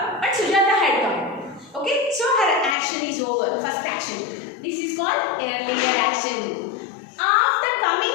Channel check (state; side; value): drops out; right; at 2.8 s